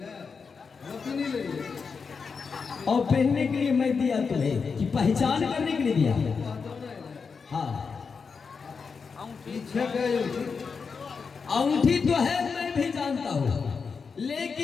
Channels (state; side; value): quieter; right; 5.4 dB